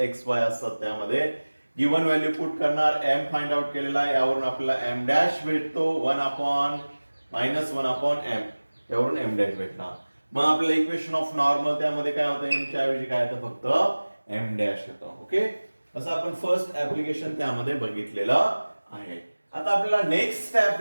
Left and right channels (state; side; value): inverted; both; correlation -1.00